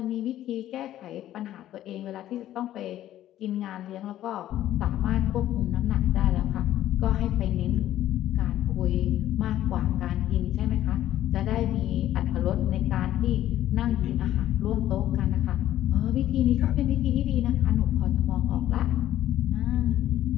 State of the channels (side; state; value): right; quieter; 12.9 dB